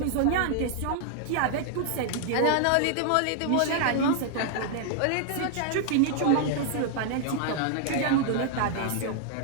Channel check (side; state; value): both; different; correlation 0.00